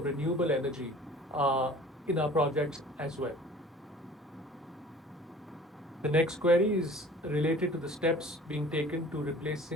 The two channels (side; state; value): both; normal; correlation 0.47